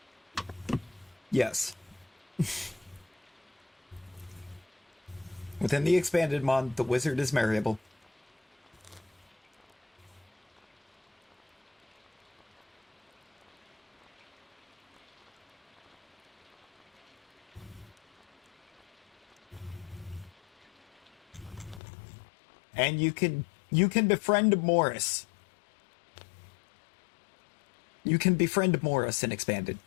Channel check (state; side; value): drops out; right; at 21.8 s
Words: Yes. Within the expanded mod, the wizard is marryable. And you can befriend Morris. You can befriend Morris in expanded.